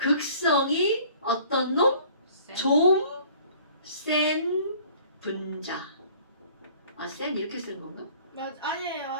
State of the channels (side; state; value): both; inverted; correlation -0.52